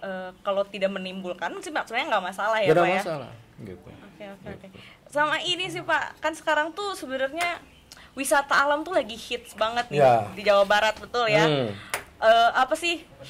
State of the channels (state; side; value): identical; both; correlation 1.00